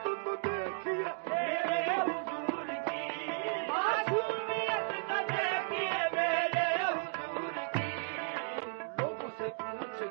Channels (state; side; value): silent; left; 55 dB below the other